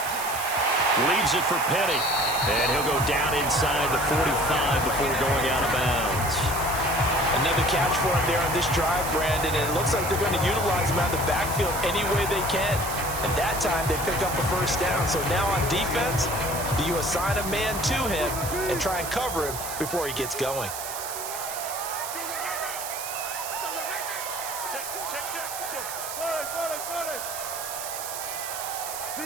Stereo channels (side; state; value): right; noise; hiss, 7 dB below the sound